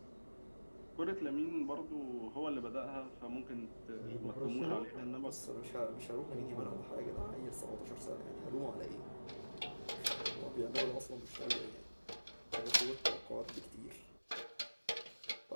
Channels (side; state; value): both; inverted; correlation -1.00